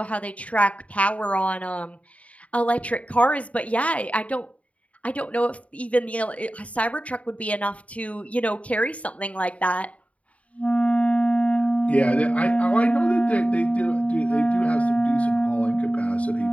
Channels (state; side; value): late; right; 0.066 ms